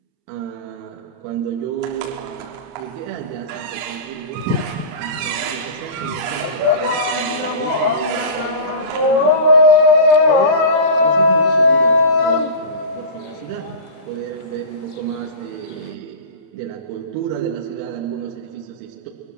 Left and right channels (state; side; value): late; left; 39 ms